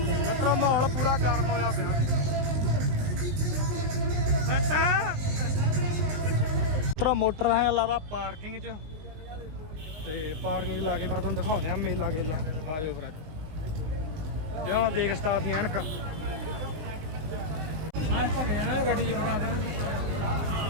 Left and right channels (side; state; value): left; late; 19 ms